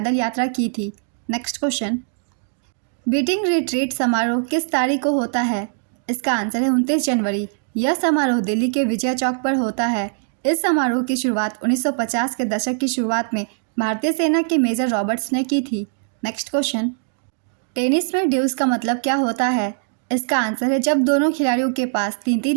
यात्रा की थी। नेक्स्ट क्वेश्चन, बीटिंग रिट्रीट समारोह किस तारीख को होता है? इसका आंसर है 29 जनवरी। यह समारोह दिल्ली के विजय चौक पर होता है। इस समारोह की शुरुआत 1950 के दशक की शुरुआत में भारतीय सेना के मेजर रॉबर्ट्स ने की थी। नेक्स्ट क्वेश्चन, टेनिस में ड्यूस का मतलब क्या होता है? इसका आंसर है जब दोनों खिलाड़ियों के पास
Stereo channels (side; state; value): left; silent; digital silence